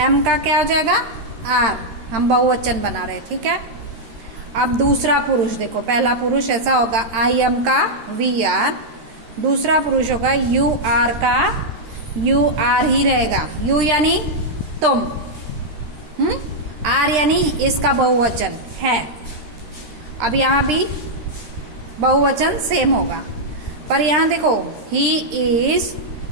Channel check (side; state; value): left; late; 13 ms